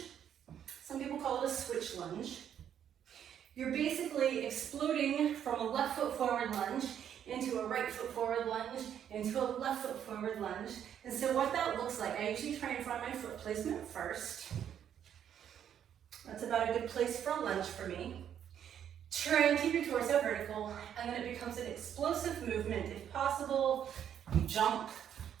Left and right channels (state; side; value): quieter; left; 9.4 dB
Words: Some people call it a switch lunge. You're basically exploding from a left foot forward lunge into a right foot forward lunge, into a left foot forward lunge. And so what that looks like, I usually try and find my foot placement first. That's about a good place for a lunge for me. Try and keep your torso vertical, and then it becomes an explosive movement. If possible, you jump,